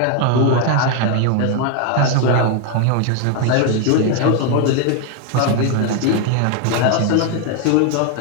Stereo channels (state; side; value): different; both; correlation 0.00